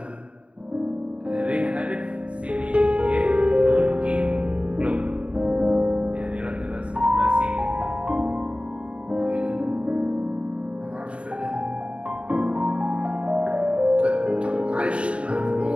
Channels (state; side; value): late; left; 0.060 ms